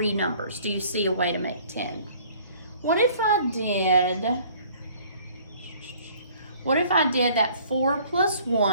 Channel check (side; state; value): both; inverted; correlation -0.54